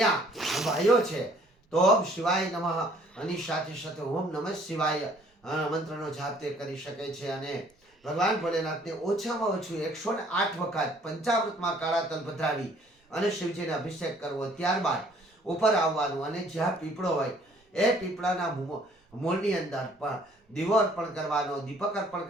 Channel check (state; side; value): normal; both; correlation 0.59